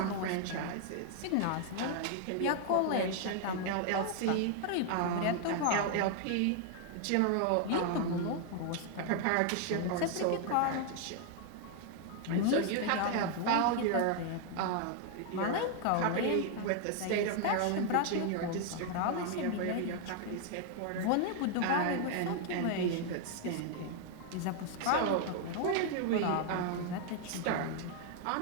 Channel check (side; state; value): both; different; correlation 0.00